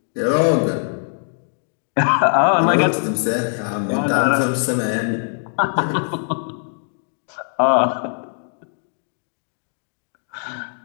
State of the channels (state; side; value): silent; right; digital silence